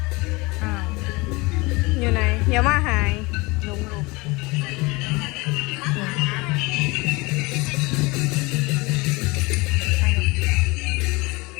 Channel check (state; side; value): quieter; right; 24.5 dB